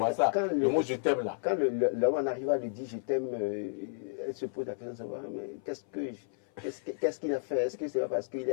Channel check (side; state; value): right; silent; 56 dB below the other